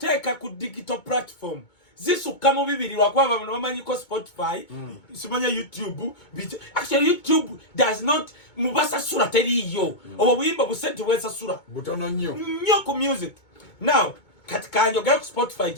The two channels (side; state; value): right; late; 2.2 ms